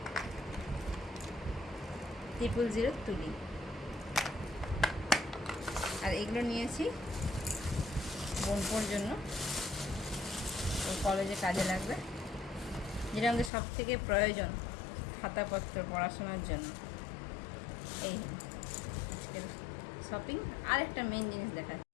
000 তুলি। আর এগুলো নিয়েছি বোনপোর জন্য, ওর কলেজে কাজে লাগবে, যেটা আমাদের সব থেকে প্রয়োজন খাতাপত্র পড়াশোনার জন্য। এই শপিং। আর একটা মেন জিনিস দেখা,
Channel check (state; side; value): drops out; right; at 13.5 s